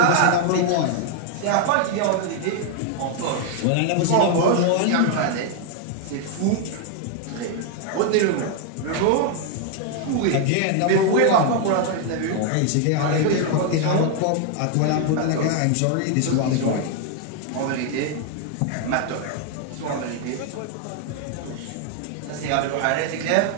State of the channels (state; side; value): different; both; correlation 0.00